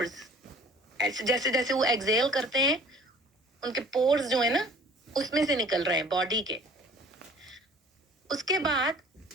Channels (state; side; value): normal; both; correlation 0.51